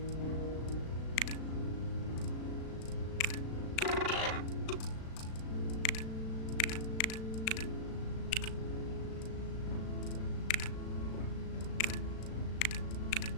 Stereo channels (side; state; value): right; late; 36 ms